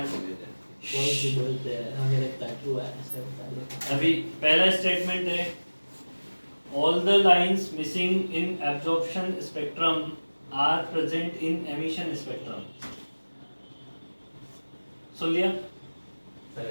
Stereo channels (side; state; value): both; inverted; correlation -1.00